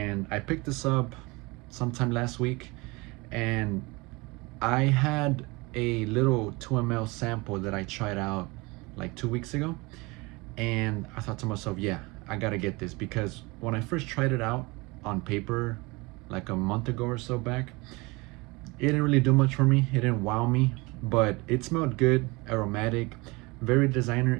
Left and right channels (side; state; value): left; quieter; 24.8 dB